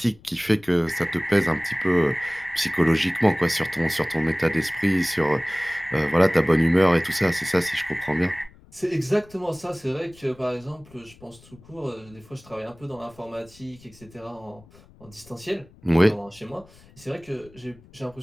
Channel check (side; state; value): left; noise; rumble, 25 dB below the sound